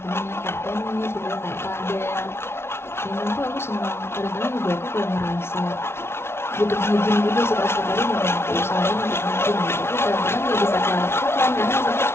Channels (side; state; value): right; late; 0.12 ms